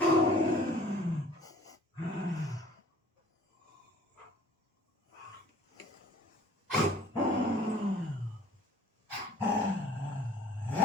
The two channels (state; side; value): normal; both; correlation 0.51